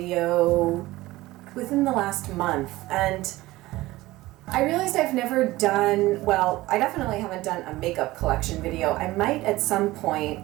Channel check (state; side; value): quieter; left; 18.3 dB